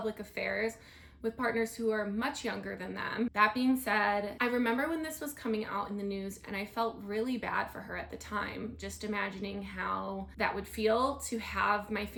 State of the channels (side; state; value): both; identical; correlation 1.00